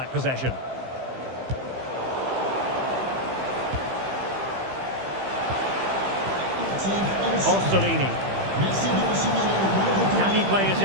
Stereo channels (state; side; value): late; left; 15 ms